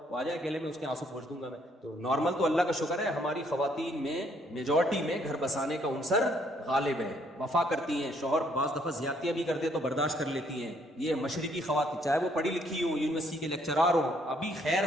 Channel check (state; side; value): normal; both; correlation 0.68